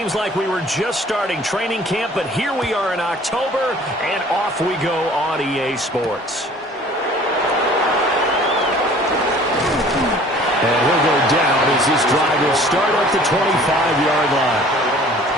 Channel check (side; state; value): both; normal; correlation 0.50